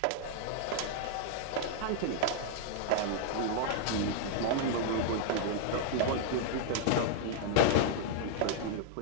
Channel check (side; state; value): both; different; correlation -0.01